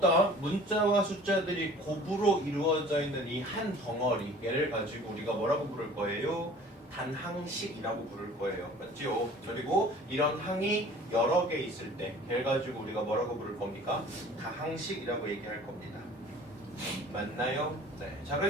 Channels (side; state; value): both; normal; correlation 0.47